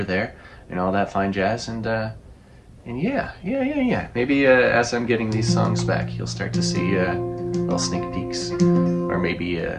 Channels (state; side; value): identical; both; correlation 1.00